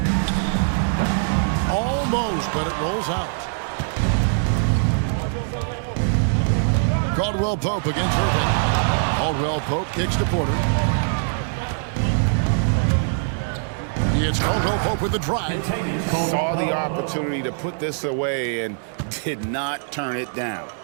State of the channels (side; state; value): left; silent; digital silence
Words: Almost, but it rolls out. Caldwell Pope against Irving. Caldwell Pope kicks to Porter. It's Caldwell Pope with the drive. Saw the opportunity to put this away and did not turn it down.